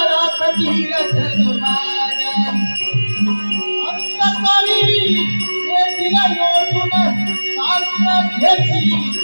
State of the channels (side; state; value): both; inverted; correlation -1.00